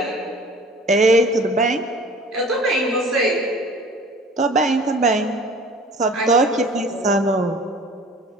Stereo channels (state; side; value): normal; both; correlation 0.46